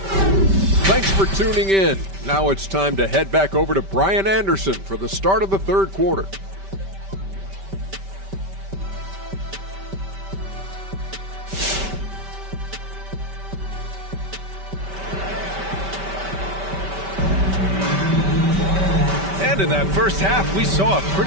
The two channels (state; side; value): late; left; 5.1 ms